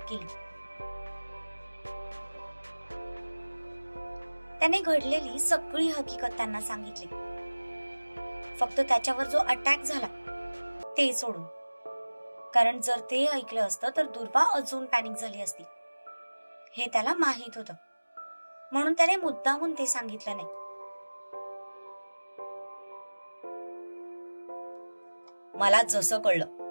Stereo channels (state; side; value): inverted; both; correlation -1.00